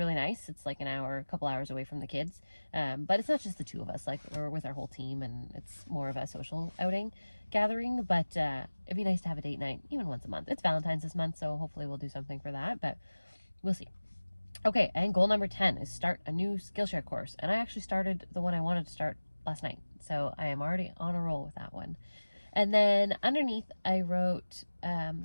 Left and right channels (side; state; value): both; inverted; correlation -1.00